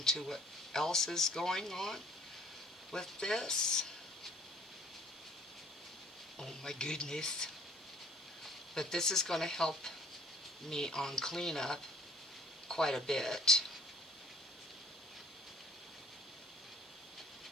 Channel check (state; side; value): normal; both; correlation 0.55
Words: to what else is going on with this. Oh my goodness. But this is going to help me on cleanup quite a bit.